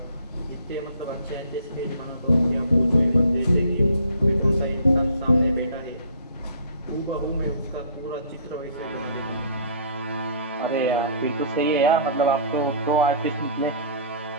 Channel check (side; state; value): both; inverted; correlation -0.51